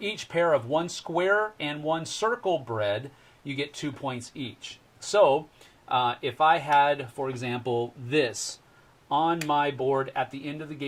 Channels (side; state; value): both; identical; correlation 1.00